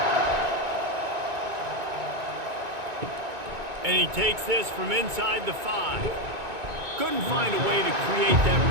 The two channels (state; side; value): late; left; 2.2 ms